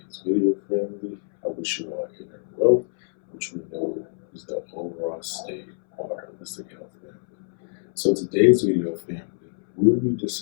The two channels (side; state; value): right; silent; 62 dB below the other